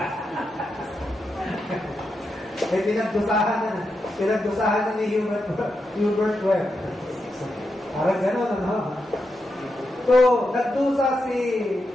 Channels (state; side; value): normal; both; correlation 0.86